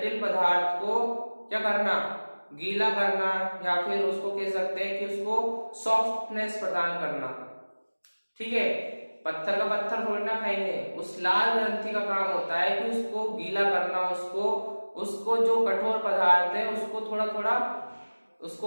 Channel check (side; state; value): both; inverted; correlation -1.00